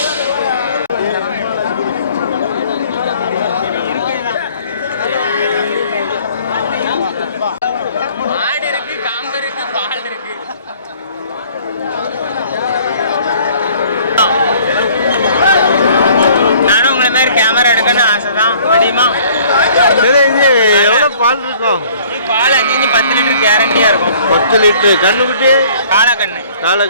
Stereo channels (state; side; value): inverted; both; correlation -0.55